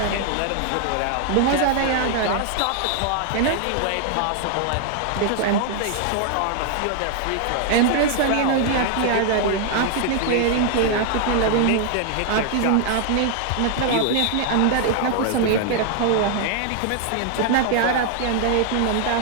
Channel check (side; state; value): both; different; correlation 0.00